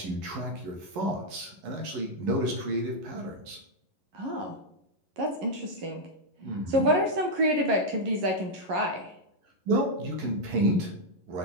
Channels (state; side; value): late; left; 11 ms